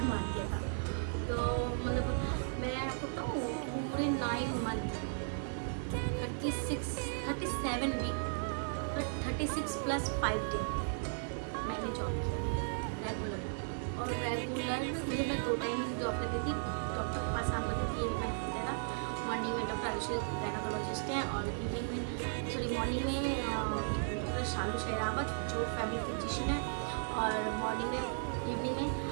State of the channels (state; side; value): silent; left; digital silence